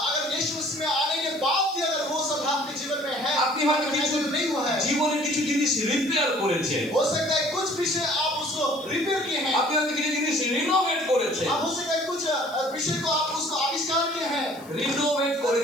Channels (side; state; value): left; noise; hiss, 23 dB below the sound